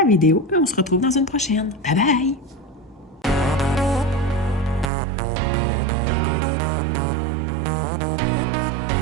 vidéo et on se retrouve dans une prochaine. Bye bye!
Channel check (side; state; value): left; drops out; at 4.9 s